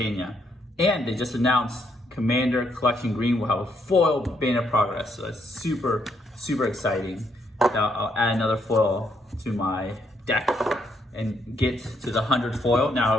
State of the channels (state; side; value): normal; both; correlation 0.74